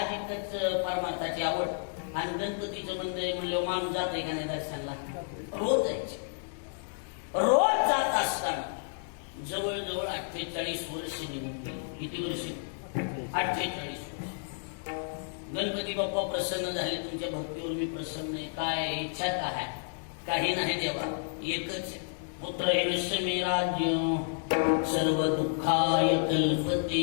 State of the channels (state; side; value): silent; right; 57 dB below the other